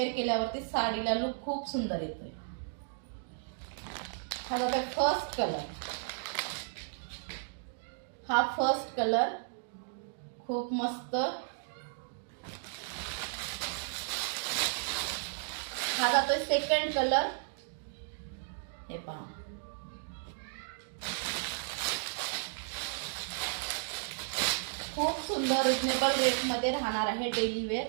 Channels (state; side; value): silent; left; digital silence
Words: केल्यावरती साडीला लुक खूप सुंदर येतोय। हा बघा फर्स्ट कलर, हा फर्स्ट कलर खूप मस्त। हा जातोय सेकंड कलर। हे पहा, खूप सुंदर रिजनेबल रेट मध्ये राहणार आहे। डेली वेअर